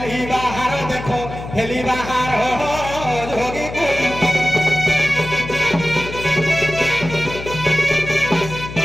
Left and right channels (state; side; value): noise; left; hum, 10 dB below the sound